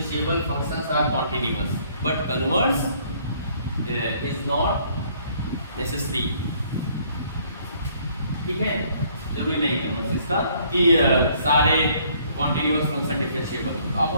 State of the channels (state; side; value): inverted; both; correlation -0.62